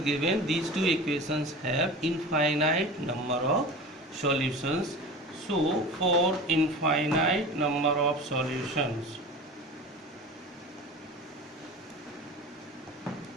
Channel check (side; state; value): both; normal; correlation 0.34